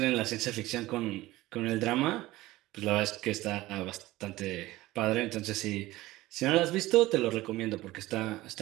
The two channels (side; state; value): left; quieter; 17.8 dB